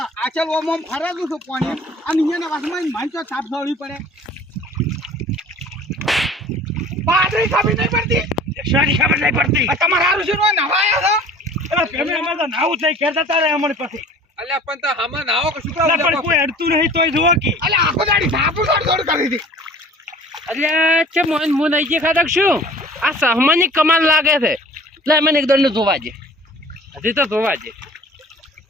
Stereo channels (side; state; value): both; normal; correlation 0.46